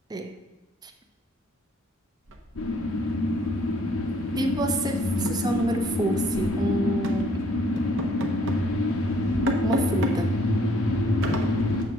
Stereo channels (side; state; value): both; normal; correlation 0.63